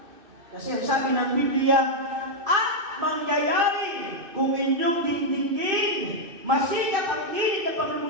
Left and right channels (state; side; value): late; left; 2.6 ms